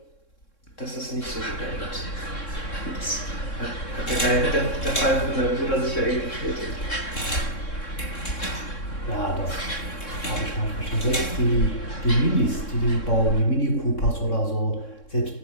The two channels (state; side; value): late; right; 3.7 ms